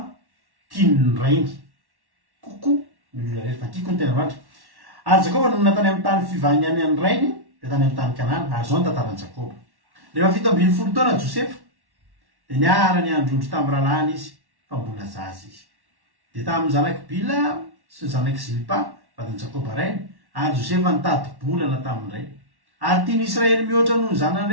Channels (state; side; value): late; left; 1.1 ms